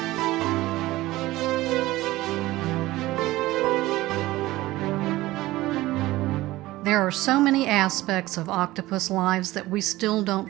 There are so many aspects of octopus lives that we still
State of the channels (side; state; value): left; quieter; 17.7 dB